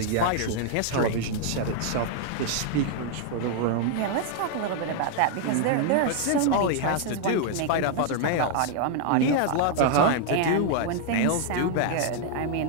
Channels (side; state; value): both; different; correlation 0.00